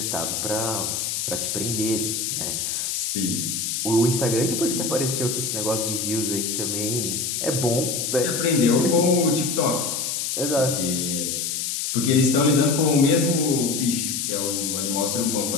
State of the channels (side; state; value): left; noise; hiss, 2 dB below the sound